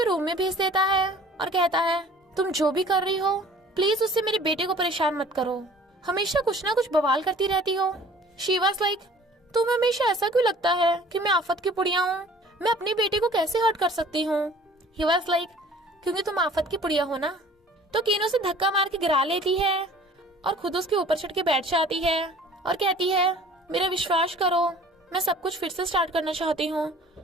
रूम में भेज देता है और कहता है तुम जो भी कर रही हो प्लीज उससे मेरे बेटे को परेशान मत करो, हमेशा कुछ ना कुछ बवाल करती रहती हो। शी वाज लाइक तुम्हें हमेशा ऐसा क्यों लगता है कि मैं आफत की पुड़िया हूँ, मैं अपने बेटे को कैसे हर्ट कर सकती हूँ? ही वाज लाइक क्योंकि तुम आफत की पुड़िया हो ना। तो कीनो से धक्का मार के गिरा लेती है और खुद उसके ऊपर चढ़ के बैठ जाती है और कहती है मेरा विश्वास करो, मैं सब कुछ फिर से स्टार्ट करना चाहती हूँ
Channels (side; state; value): both; normal; correlation 0.49